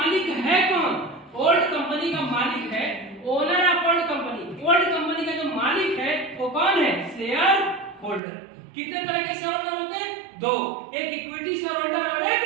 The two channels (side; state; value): left; drops out; at 8.2 s